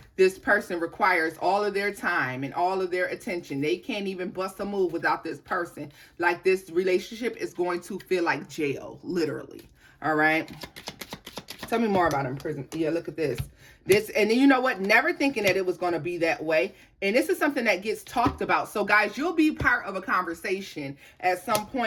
this person requires all of their time and all of their attention. They can't even bust a move without this person. Like, this relationship is going to feel like jail, literally. All right. Tell me more about in prison. Yeah, look at this. And then you know what? Never thinking that it was going to be that way. And this is something that gets talked about. So guys, you'll be part of a conversation at some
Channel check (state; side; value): identical; both; correlation 1.00